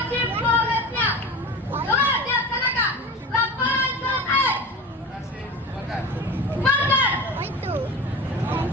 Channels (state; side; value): normal; both; correlation 0.32